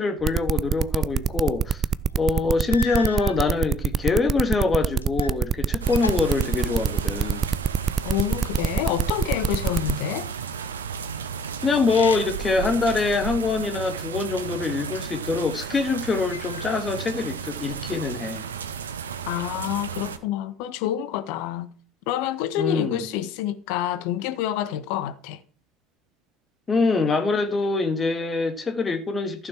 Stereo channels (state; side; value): normal; both; correlation 0.58